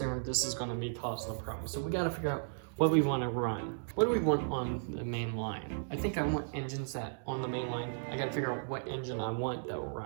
this is going to be causing a problem. So we got to figure out what we want to run. What do we want on the main line? I think I want engines that on the main line. I got to figure out what engine I want that will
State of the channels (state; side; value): silent; left; digital silence